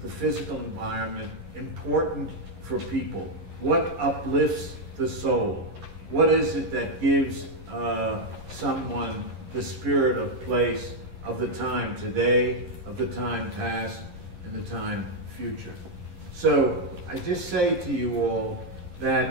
the physical environment important for people, what uplifts the soul, what is it that gives someone the spirit of place, of the time today, of the time past, and the time future. So I just say to you all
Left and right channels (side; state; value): left; late; 11 ms